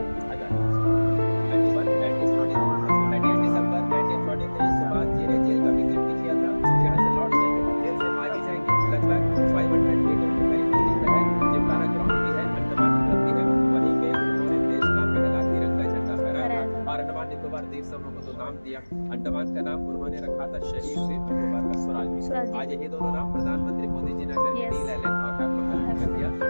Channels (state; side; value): inverted; both; correlation -1.00